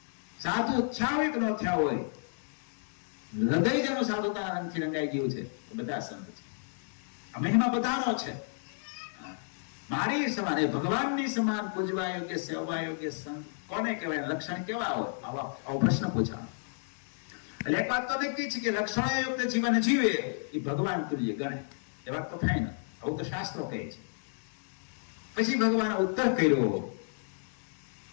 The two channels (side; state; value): right; silent; digital silence